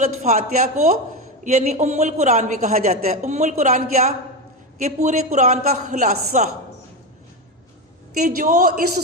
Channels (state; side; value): normal; both; correlation 0.14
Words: فاتحہ کو یعنی ام القرآن بھی کہا جاتا ہے۔ ام القرآن کیا کہ پورے قرآن کا خلاصہ، کہ جو اس